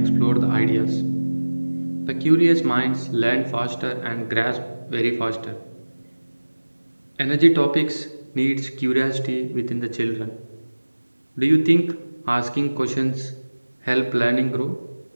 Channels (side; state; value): both; inverted; correlation -1.00